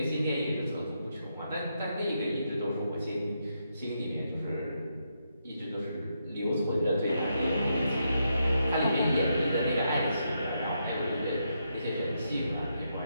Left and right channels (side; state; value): both; inverted; correlation -0.81